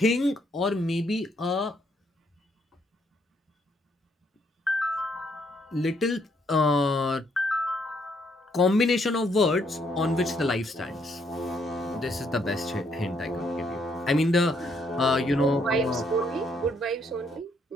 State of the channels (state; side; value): normal; both; correlation 0.72